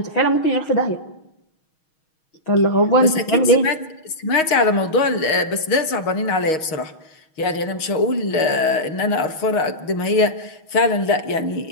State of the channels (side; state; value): right; late; 6.3 ms